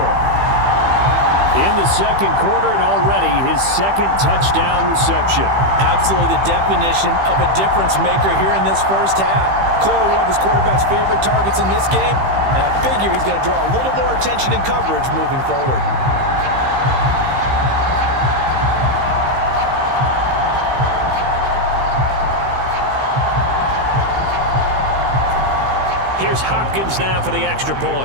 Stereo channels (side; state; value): left; late; 15 ms